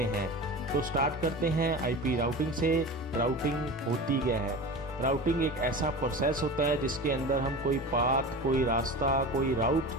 हैं। तो स्टार्ट करते हैं आईपी राउटिंग से। राउटिंग होती क्या है? राउटिंग एक ऐसा प्रोसेस होता है जिसके अंदर हम कोई पाथ, कोई रास्ता, कोई राउट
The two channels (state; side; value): normal; both; correlation 0.31